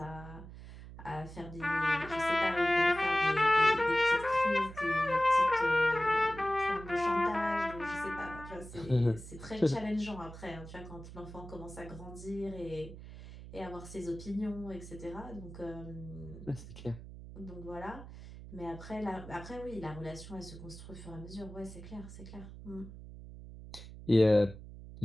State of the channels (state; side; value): noise; right; hum, 14 dB below the sound